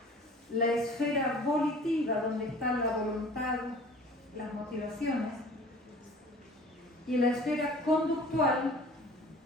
la esfera volitiva, donde está la voluntad, las motivaciones, y la esfera conductual,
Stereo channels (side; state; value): both; normal; correlation 0.46